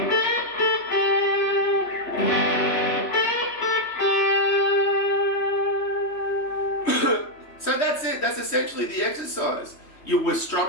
So that's it. That's essentially the exercise. We're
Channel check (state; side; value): late; right; 3.3 ms